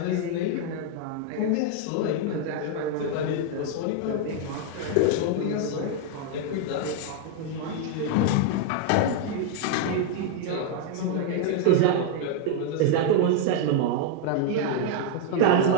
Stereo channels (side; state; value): both; different; correlation 0.00